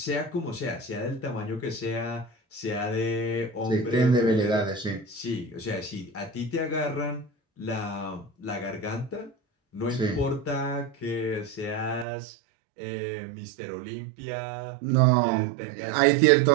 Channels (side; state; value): left; drops out; at 12.1 s